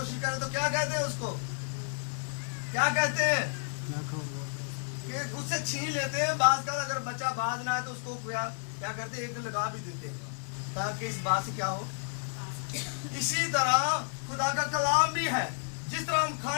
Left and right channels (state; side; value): silent; right; digital silence